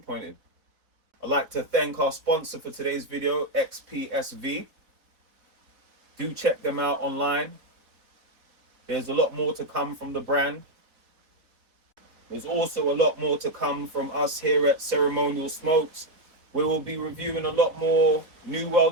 I'd like to thank our sponsor for today's video, XPSV. Do check them out online. There's a lot more to come from the brand. There's also a lot more to come from us here at Ceremonial Smokes. We will be reviewing a lot more New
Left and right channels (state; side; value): late; left; 4.1 ms